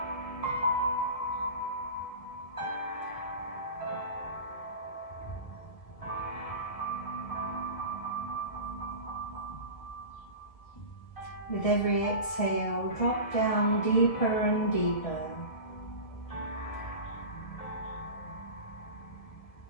With every exhale, drop down deeper and deeper.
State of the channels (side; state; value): right; late; 1.8 ms